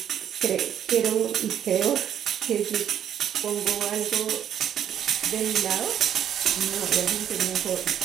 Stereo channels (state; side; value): quieter; left; 9.6 dB